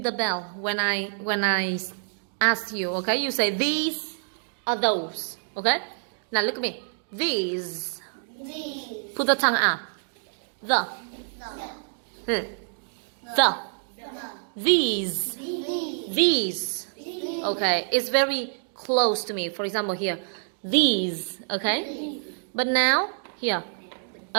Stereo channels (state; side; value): silent; left; digital silence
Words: the bell when I ask you. Okay, you say these or those. Okay, now look at me. These. These. Put the tongue out. The. The. The. The. These. These. These. These. Okay, it's very close to me. For example, here, these. Okay, but now here.